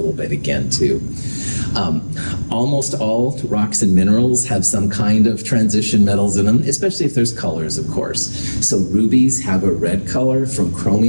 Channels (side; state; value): both; inverted; correlation -1.00